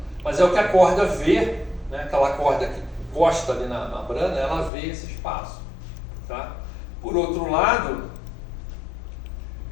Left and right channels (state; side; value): drops out; right; at 4.7 s